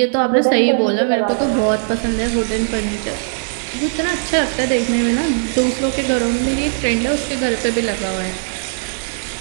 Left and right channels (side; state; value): left; silent; 67 dB below the other